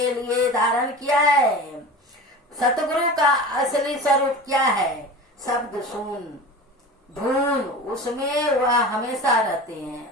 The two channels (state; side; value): normal; both; correlation 0.33